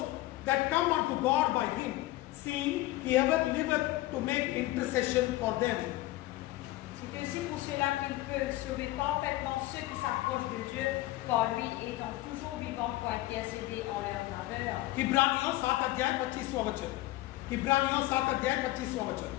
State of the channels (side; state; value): right; quieter; 17.3 dB